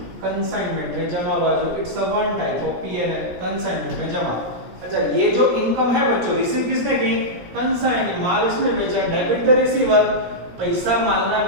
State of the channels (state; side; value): late; left; 17 ms